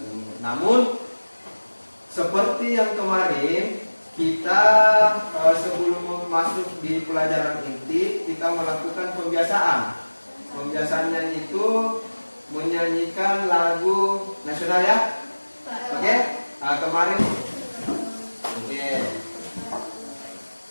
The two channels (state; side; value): inverted; both; correlation -1.00